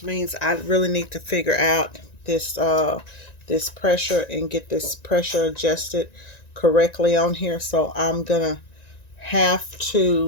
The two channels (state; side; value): late; right; 1.9 ms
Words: means I really need to figure out this this pressure and get this pressure adjusted correctly on here. So I'm gonna have